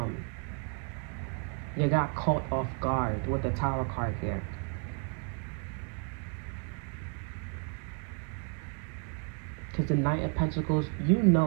You got caught off guard with the Tower card here. Because the Knight of Pentacles, you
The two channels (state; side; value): quieter; left; 38.2 dB